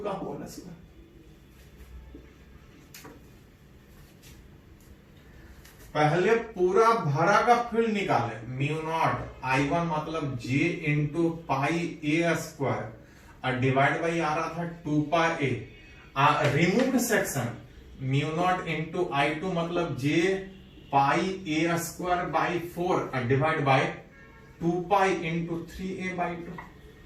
का होल स्क्वायर। पहले पूरा भरा का फील्ड निकाले, म्यू नॉट I1 मतलब J into pi a square और डिवाइड बाई आ रहा था 2 pi a. Removed section mu naught into I2 मतलब J pi a square by 4 और divide by 2 pi into 3a/2।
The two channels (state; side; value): identical; both; correlation 1.00